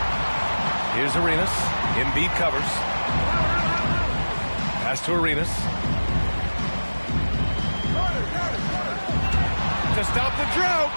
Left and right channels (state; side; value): inverted; both; correlation -1.00